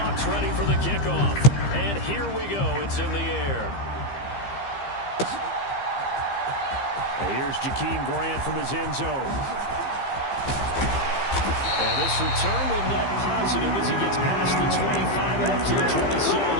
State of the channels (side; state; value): right; late; 15 ms